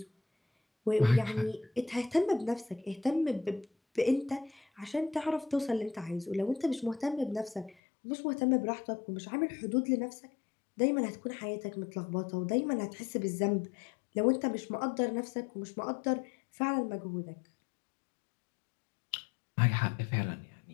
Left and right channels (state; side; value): drops out; right; at 7.8 s